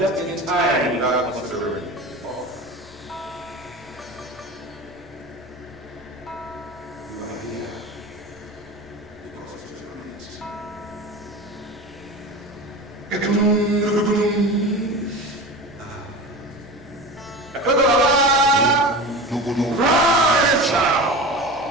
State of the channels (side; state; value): both; normal; correlation 0.30